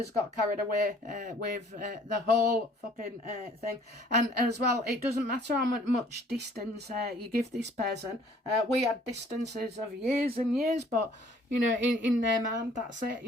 got carried away with the whole fucking thing. And as well, it doesn't matter how much distance you give this person. We had distances of years and years, but, you know, in their mind, that's it,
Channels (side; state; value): both; normal; correlation 0.57